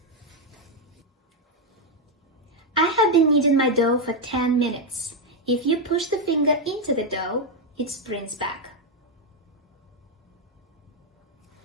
I have been kneading my dough for 10 minutes. If you push the finger into the dough, it sprints back.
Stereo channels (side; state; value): both; normal; correlation 0.03